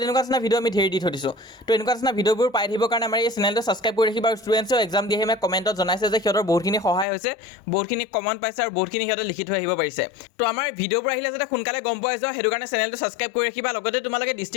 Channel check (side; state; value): right; drops out; at 7.1 s